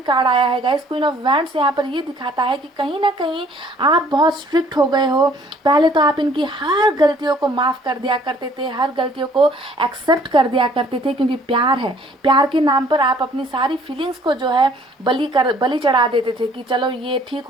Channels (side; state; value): both; normal; correlation 0.58